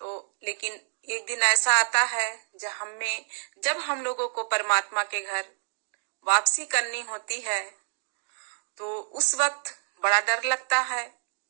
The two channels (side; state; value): left; silent; digital silence